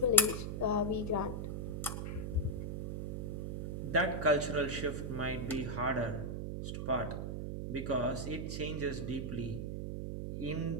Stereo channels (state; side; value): noise; right; hum, 3 dB below the sound